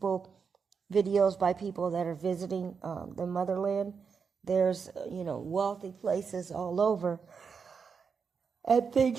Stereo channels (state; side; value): quieter; left; 5.9 dB